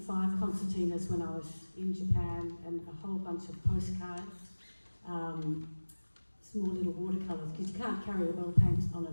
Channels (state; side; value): inverted; both; correlation -1.00